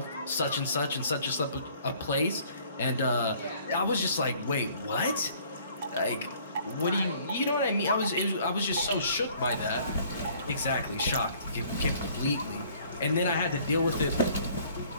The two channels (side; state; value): both; inverted; correlation -0.57